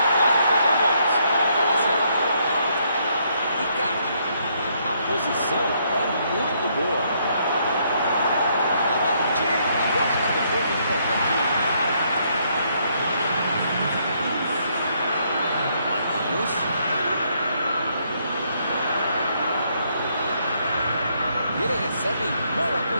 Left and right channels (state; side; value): inverted; both; correlation -0.72